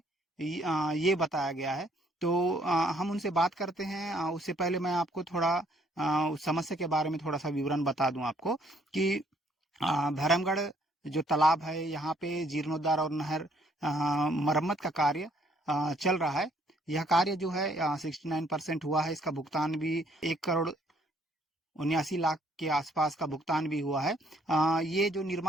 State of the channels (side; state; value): both; normal; correlation 0.66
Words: ये बताया गया है। तो हम उनसे बात करते हैं। उससे पहले मैं आपको थोड़ा उस समस्या के बारे में थोड़ा सा विवरण बता दूं आपको कि भैरमगढ़ जो तालाब है, यहाँ पे जीर्णोद्धार और नहर मरम्मत का कार्य चल रहा है। यह कार्य जो है 69% हुआ है। इसका भुगतान भी 1,79,00,000 के आसपास का भुगतान भी हुआ है। ये जो